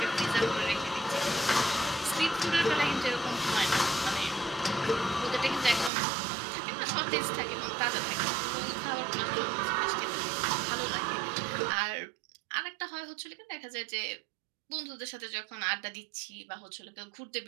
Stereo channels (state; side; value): drops out; left; at 5.9 s